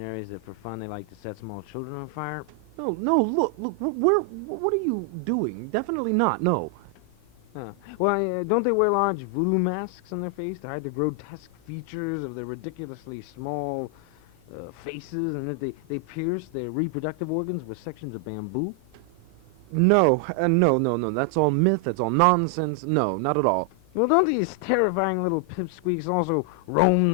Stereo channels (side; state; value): left; late; 31 ms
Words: that for fun they like to set small children on fire? No, look, what are you doing? Definitely not, no. Well, don't they wear large voodoo masks on their face to hide the grotesque features of their ridiculously small faces, and that they pierce their reproductive organs with sections of bamboo? No, no, that's all myth, that's all nonsense. No, not at all. Well, don't these terrifying little pipsqueaks also roam